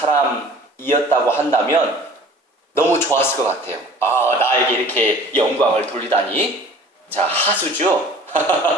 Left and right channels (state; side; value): normal; both; correlation 0.47